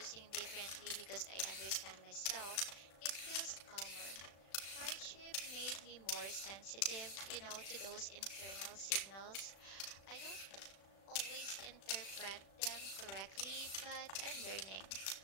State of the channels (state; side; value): late; right; 36 ms